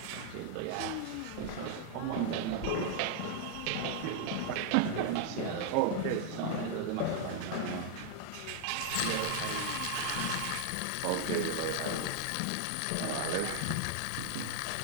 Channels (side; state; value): both; different; correlation 0.00